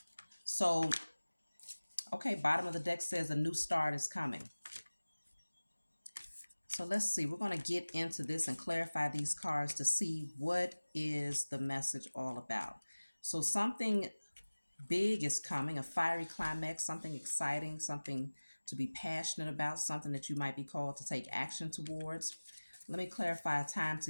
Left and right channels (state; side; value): inverted; both; correlation -1.00